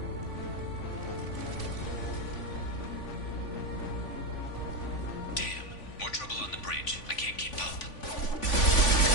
Damn. More trouble on the bridge. I can't keep up.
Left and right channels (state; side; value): late; right; 3.5 ms